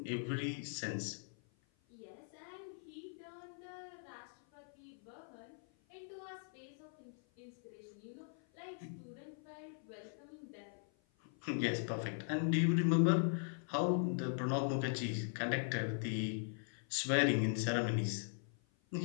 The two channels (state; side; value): silent; right; 51 dB below the other